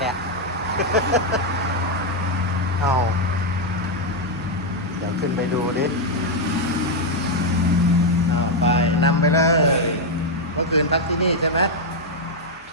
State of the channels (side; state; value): both; normal; correlation 0.01